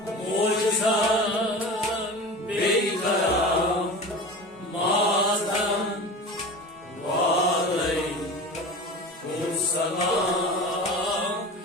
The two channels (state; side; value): normal; both; correlation 0.32